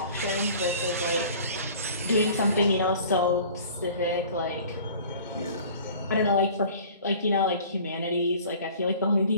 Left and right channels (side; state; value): both; inverted; correlation -0.47